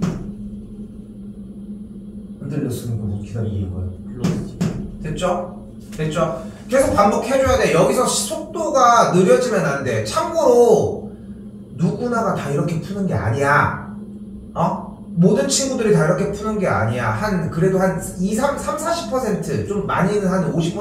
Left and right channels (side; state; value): both; identical; correlation 1.00